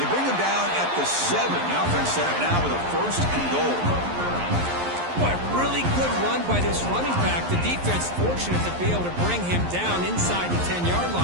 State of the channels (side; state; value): left; late; 11 ms